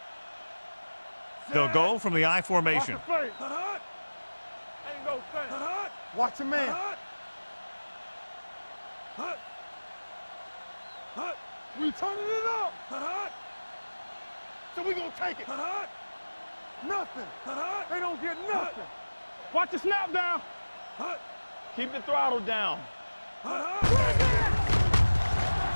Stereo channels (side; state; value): both; inverted; correlation -1.00